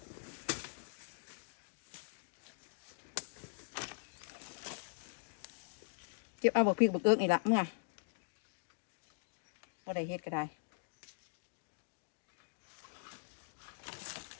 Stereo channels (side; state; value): right; silent; digital silence